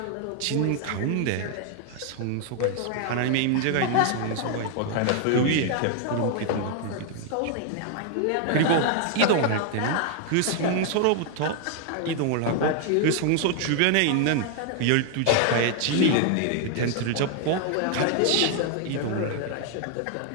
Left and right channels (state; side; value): different; both; correlation 0.00